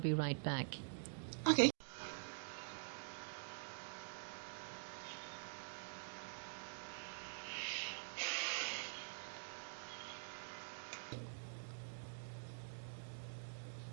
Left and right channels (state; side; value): silent; left; digital silence